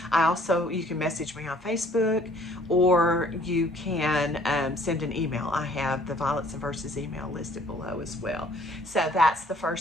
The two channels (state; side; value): normal; both; correlation 0.58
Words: You can message me on Facebook, or you can send an email. I have the Violets and Verses email listed below as well. So that's the